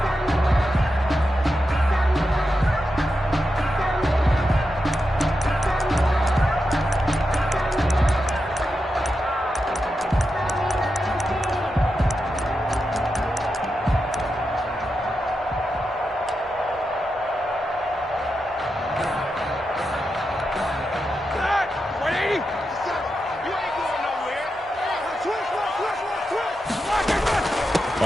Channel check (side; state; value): both; normal; correlation 0.88